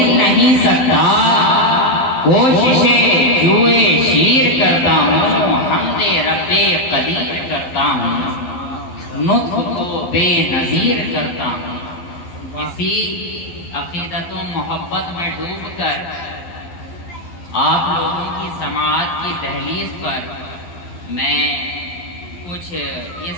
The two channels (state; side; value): late; right; 11 ms